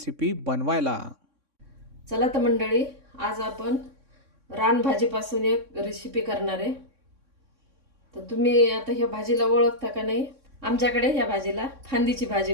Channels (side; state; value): left; late; 3.6 ms